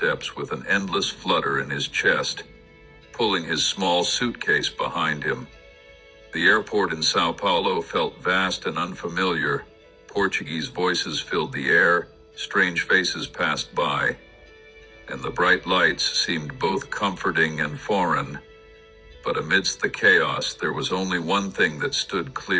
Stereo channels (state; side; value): identical; both; correlation 1.00